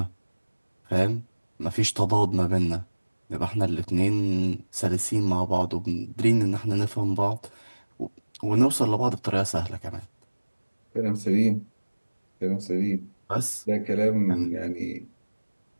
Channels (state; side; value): inverted; both; correlation -1.00